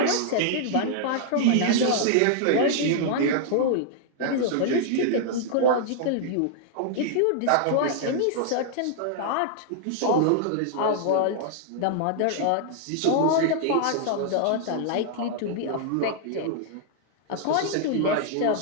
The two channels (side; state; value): both; different; correlation -0.01